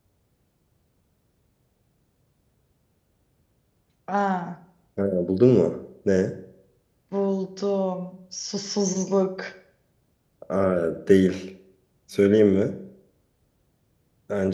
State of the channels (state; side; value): identical; both; correlation 1.00